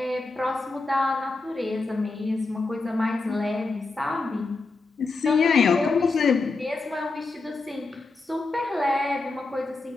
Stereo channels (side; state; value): right; quieter; 3.6 dB